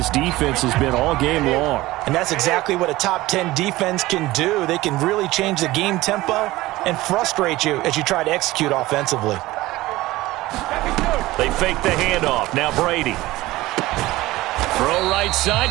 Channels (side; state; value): left; quieter; 18.2 dB